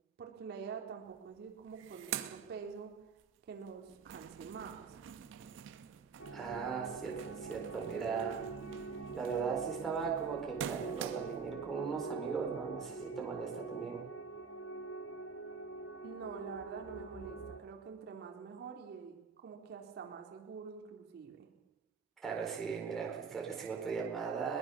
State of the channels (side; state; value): left; quieter; 5.6 dB